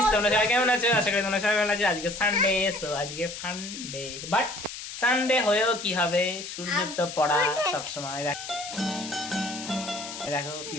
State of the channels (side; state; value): left; noise; hiss, 10 dB below the sound